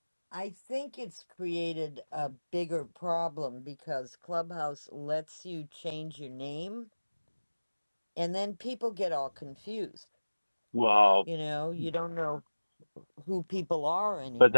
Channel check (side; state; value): both; inverted; correlation -1.00